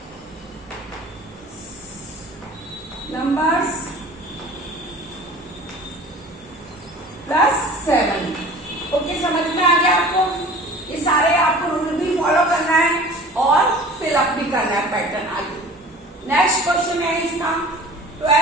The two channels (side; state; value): both; normal; correlation 0.43